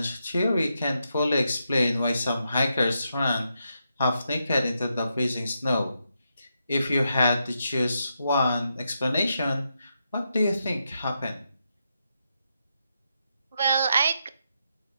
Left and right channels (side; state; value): both; inverted; correlation -0.83